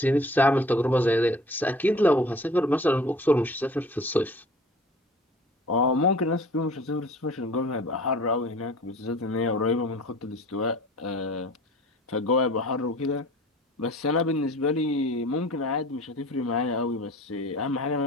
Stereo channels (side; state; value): both; normal; correlation 0.44